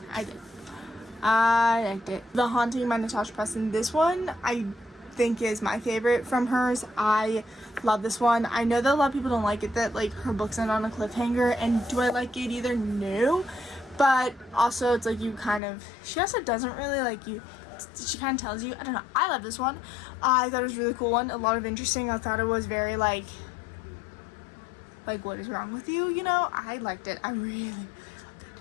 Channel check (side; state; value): right; drops out; at 15.6 s